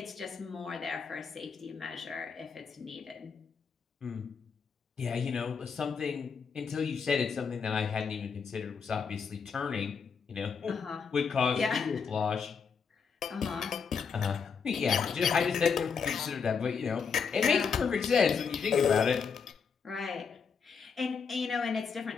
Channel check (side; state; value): right; quieter; 6.0 dB